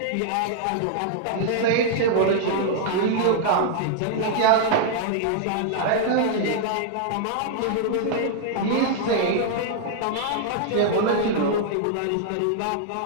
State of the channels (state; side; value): different; both; correlation -0.01